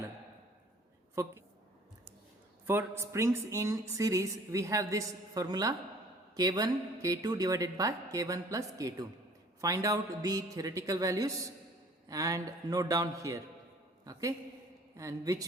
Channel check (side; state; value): both; normal; correlation 0.52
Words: For springs in series, we have this formula K1 K2 divided by K1 plus K2. Find out the theoretical values and note down here. Okay, and which